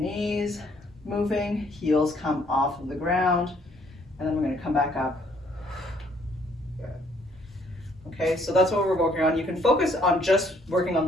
moving, heels come off of the ground, and then we're going to come back up. Okay, so that's what we're working on. You can focus on just working on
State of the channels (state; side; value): normal; both; correlation 0.65